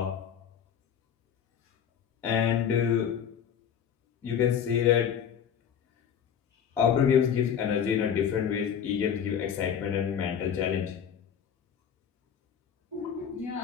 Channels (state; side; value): quieter; right; 8.2 dB